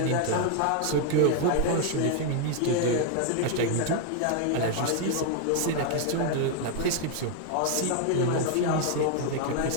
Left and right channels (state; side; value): different; both; correlation 0.00